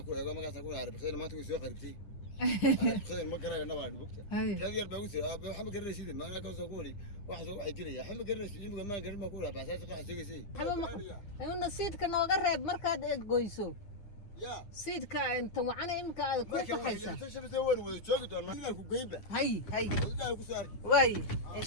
ku eego magaca ku arab qicad maanta ku soo qaribtay qicad ma garayna baa bugta kadi yar baa ku iri aab waxa ma garanaysid ma ana ka soo ku iri waxa soo waxay jiraya waxa ma garanaysid imika ma garan ma ku iri baasaas waxa sheegaysay ayuu nasiidka nooga reeb markaad goyso سيدك انت وعنا امك كيف حيسا هاي واي ان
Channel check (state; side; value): late; right; 9.7 ms